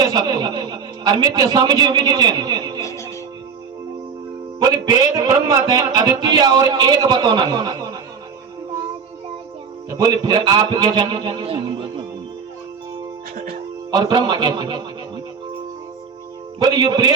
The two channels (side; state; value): left; quieter; 6.1 dB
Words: सकते और मिथ्या समझे भी नहीं चाहिए। बोले वेद ब्रह्म है अद्वितीय और एक बतौना है। तो बोले फिर आप क्या जाने और ब्रह्मा कैसे? बोले ये